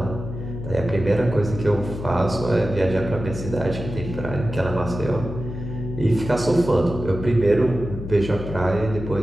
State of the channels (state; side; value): noise; left; hum, 8 dB below the sound